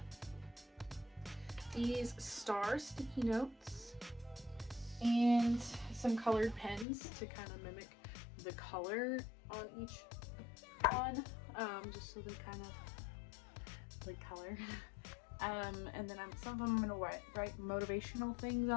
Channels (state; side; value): drops out; right; at 6.9 s